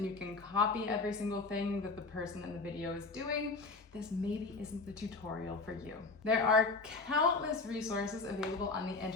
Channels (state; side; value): quieter; right; 3.9 dB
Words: you can copy every single thing that the person in the video is doing, this maybe isn't the tutorial for you. There are countless resources available on the